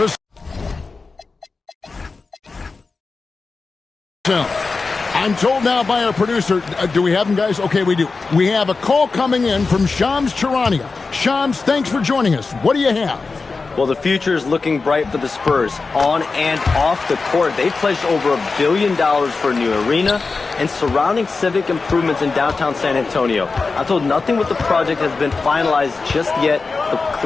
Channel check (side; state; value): right; quieter; 4.2 dB